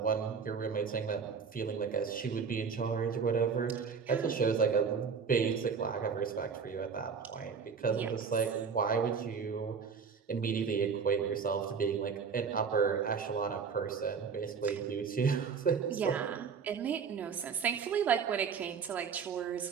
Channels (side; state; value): left; quieter; 6.0 dB